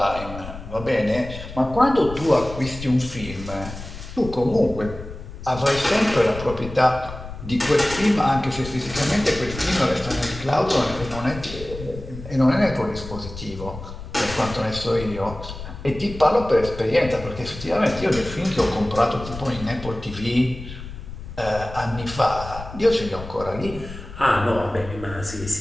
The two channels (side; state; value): left; noise; rumble, 12 dB below the sound